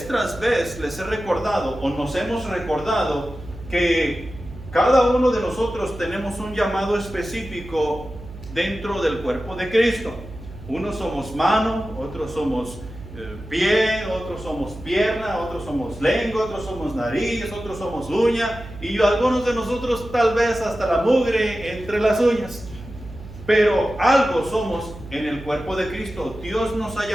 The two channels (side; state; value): right; noise; hum, 15 dB below the sound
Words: tras vez les he recordado, o nos hemos recordado, que cada uno de nosotros tenemos un llamado específico dentro del cuerpo de Cristo. Unos somos mano, otros somos pie, otros somos pierna, otros somos lengua, otros somos nariz, otros somos uña, y algunos de nosotros tal vez hasta la mugre entre las uñas. Pero algo somos en el cuerpo de Cristo. Dios nos ha